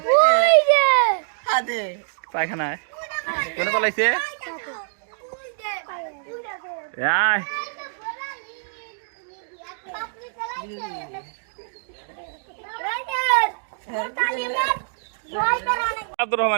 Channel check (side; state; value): left; silent; digital silence